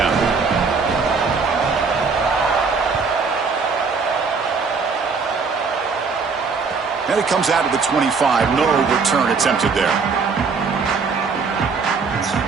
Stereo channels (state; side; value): quieter; left; 5.0 dB